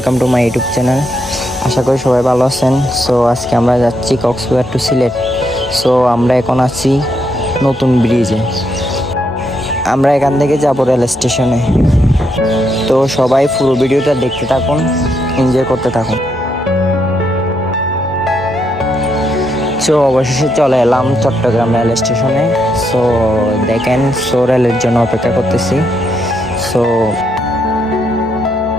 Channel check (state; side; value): normal; both; correlation 0.78